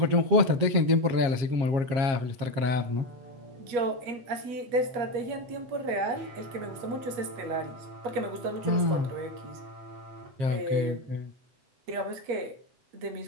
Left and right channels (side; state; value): left; late; 7.5 ms